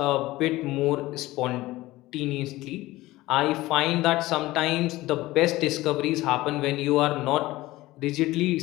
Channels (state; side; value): quieter; right; 18.0 dB